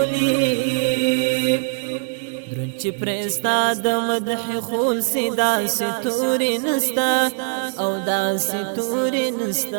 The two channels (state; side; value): silent; left; digital silence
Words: درن چې پرستا د مدح خول سی داسې تورې نستا او داسې تورې